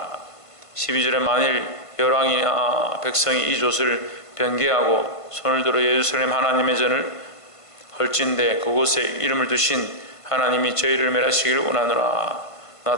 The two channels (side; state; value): right; late; 1.5 ms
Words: 12절에 만일 열왕이나 백성이 이 조서를 변개하고 손을 들어 예루살렘 하나님의 전을 헐진대 그곳에 이름을 두신 하나님이 저희를 멸하시기를 원하노라. 나